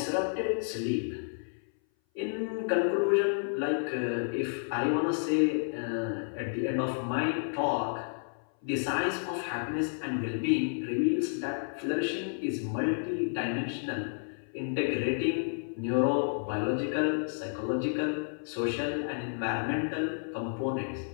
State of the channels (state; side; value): silent; right; 57 dB below the other